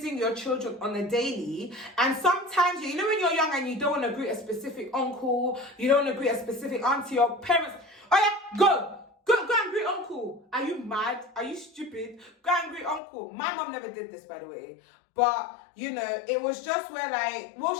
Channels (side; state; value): right; drops out; at 13.0 s